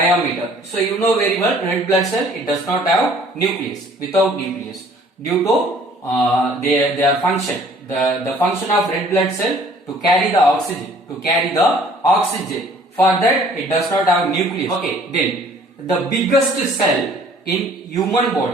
So you know very well, red blood cell, it does not have nucleus, without nucleus, due to their function. The function of red blood cell to carry the oxygen. For that it does not have nucleus. Okay, then the biggest cell in human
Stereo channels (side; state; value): both; normal; correlation 0.56